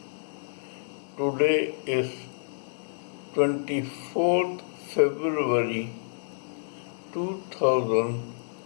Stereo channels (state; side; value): silent; right; 59 dB below the other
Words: Today is 24th February